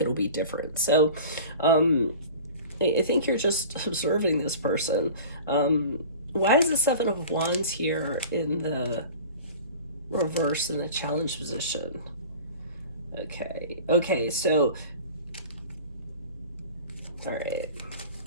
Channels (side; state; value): both; inverted; correlation -0.39